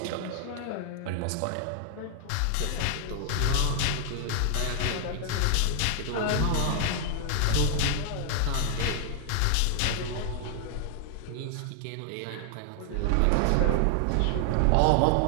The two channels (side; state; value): both; different; correlation 0.00